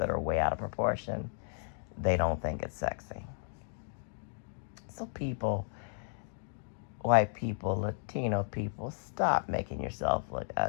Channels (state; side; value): silent; right; digital silence